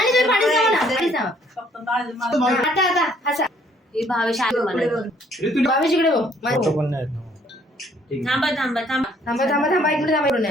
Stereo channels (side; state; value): both; normal; correlation 0.63